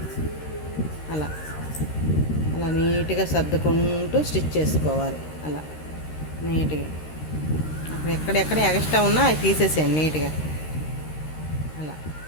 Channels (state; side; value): late; right; 13 ms